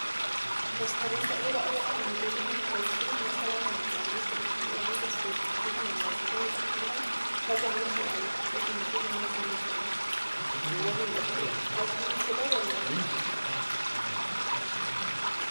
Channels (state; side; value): inverted; both; correlation -1.00